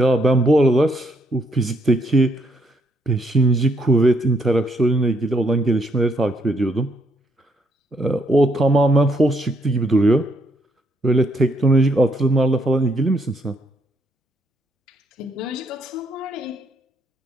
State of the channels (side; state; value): both; normal; correlation 0.73